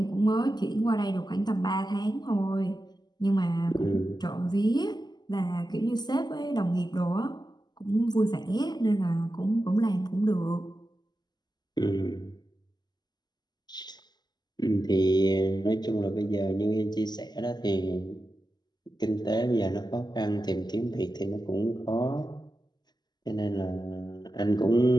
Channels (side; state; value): right; late; 0.21 ms